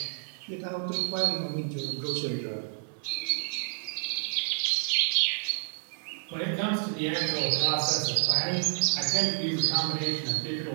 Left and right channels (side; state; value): left; silent; 57 dB below the other